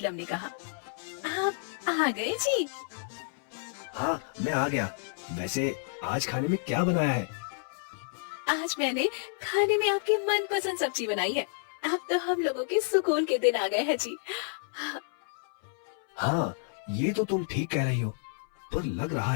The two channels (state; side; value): silent; right; 58 dB below the other